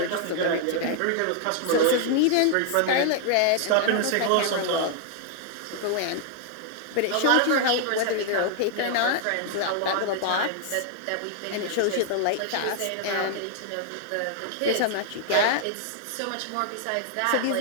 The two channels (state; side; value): different; both; correlation -0.01